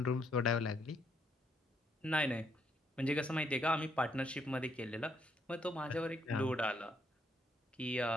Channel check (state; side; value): normal; both; correlation 0.73